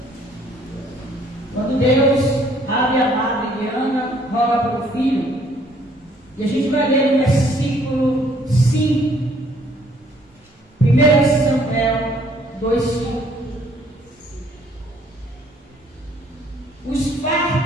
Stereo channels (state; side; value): normal; both; correlation 0.62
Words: Quando Deus abre a madre de Ana, roga para o filho. E a gente vai ler no versículo 5. 1 Samuel 2:5. Os